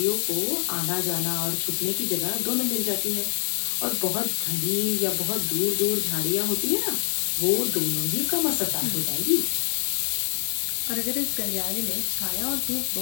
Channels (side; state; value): right; silent; digital silence